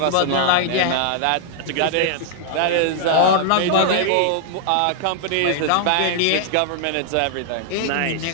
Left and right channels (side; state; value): both; different; correlation -0.01